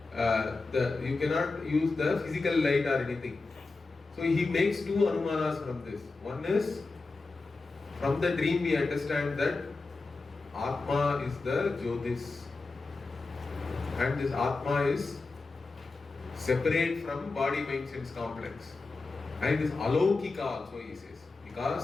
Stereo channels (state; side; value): quieter; right; 3.7 dB